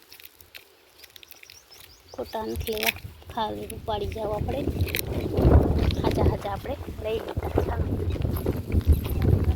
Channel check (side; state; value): both; identical; correlation 1.00